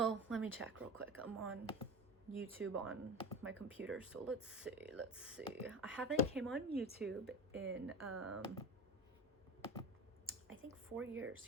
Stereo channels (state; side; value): normal; both; correlation 0.29